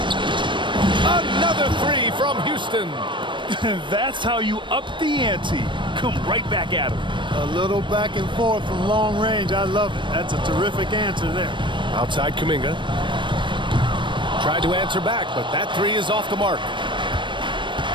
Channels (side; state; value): left; late; 0.23 ms